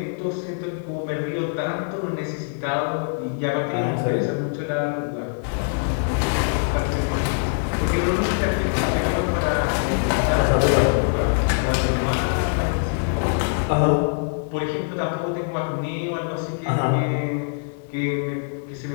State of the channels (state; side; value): silent; right; digital silence